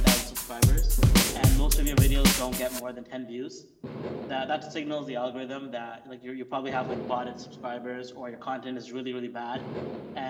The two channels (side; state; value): both; identical; correlation 1.00